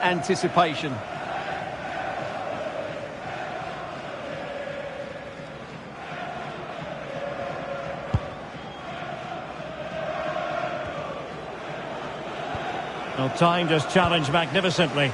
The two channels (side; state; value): both; identical; correlation 1.00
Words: anticipation. Well, time just challenged magnificently.